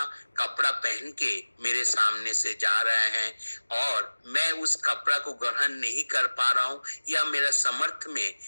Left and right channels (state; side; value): inverted; both; correlation -1.00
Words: कपड़ा पहन के मेरे सामने से जा रहा है और मैं उस कपड़ा को ग्रहण नहीं कर पा रहा हूँ या मेरा समर्थ में